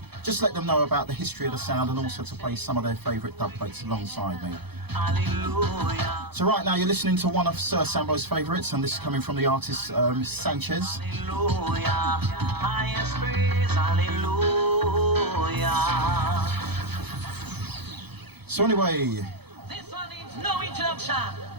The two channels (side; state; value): left; late; 0.98 ms